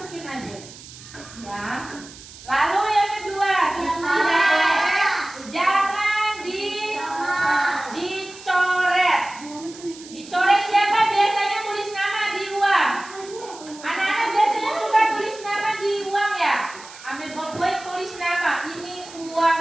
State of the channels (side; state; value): right; noise; hiss, 17 dB below the sound